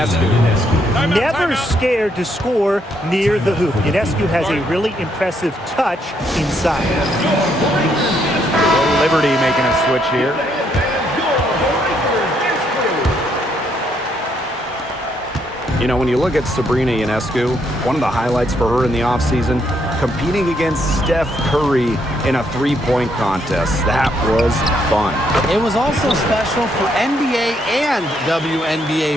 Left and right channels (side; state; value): both; normal; correlation 0.74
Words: Never scared to score near the hoop. Ionescu has a really impressive touch inside. Liberty making a switch here. You know, when you look at Sabrina Ionescu, one of the highlights for her in the offseason, competing against Steph Curry in a three-point contest. That was fun. It was also special for NBA and